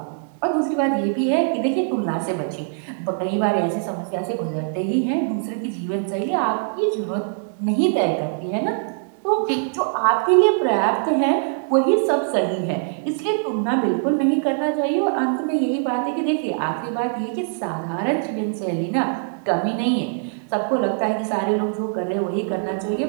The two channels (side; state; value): left; silent; digital silence